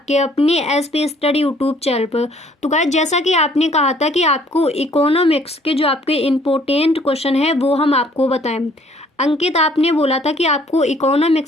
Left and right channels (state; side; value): normal; both; correlation 0.60